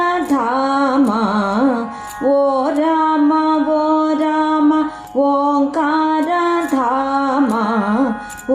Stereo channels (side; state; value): both; identical; correlation 1.00